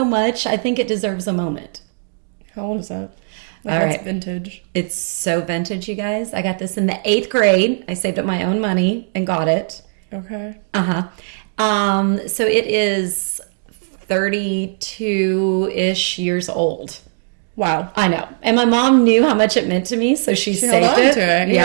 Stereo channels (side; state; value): left; silent; digital silence